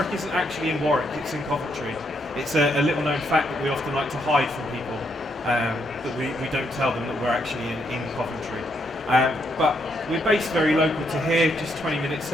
isn't actually in Warwick, it's in Coventry. It's a little known fact that we often like to hide from people, that we don't tell them that we're actually in Coventry. But we're based very local to here, just 20 minutes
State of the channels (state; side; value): normal; both; correlation 0.76